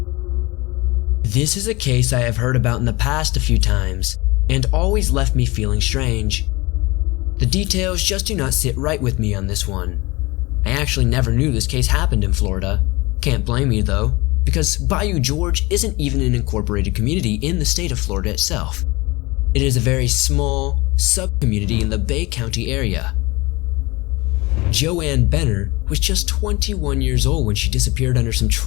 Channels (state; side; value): quieter; right; 23.0 dB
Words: This is a case I have heard about in the past a few times, and always left me feeling strange. The details just do not sit right with me on this one. I actually never knew this case happened in Florida. Can't blame me though, because Bayou George isn't even an incorporated community in the state of Florida itself. It is a very small sub-community in the Bay County area. Joanne Benner was just 21 years old when she disappeared under some